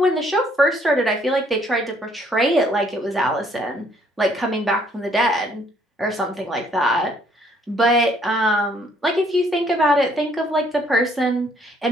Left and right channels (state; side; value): normal; both; correlation 0.65